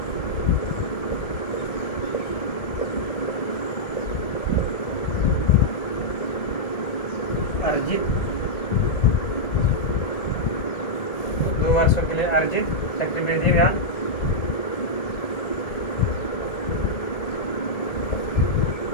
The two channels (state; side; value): late; right; 1.8 ms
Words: अर्जित 2 वर्षों के लिए अर्जित चक्रवृद्धि ब्याज